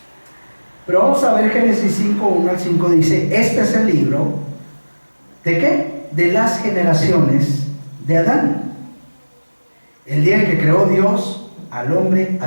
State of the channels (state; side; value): inverted; both; correlation -1.00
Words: Pero vamos a ver Génesis 5, 1 al 5, dice, este es el libro, ¿de qué? De las generaciones de Adán. El día en que creó Dios al hombre,